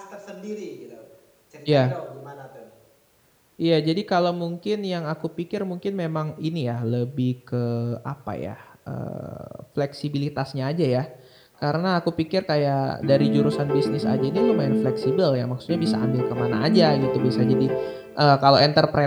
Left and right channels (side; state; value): both; identical; correlation 1.00